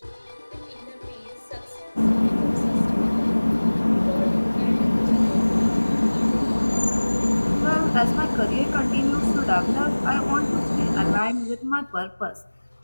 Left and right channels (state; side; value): inverted; both; correlation -1.00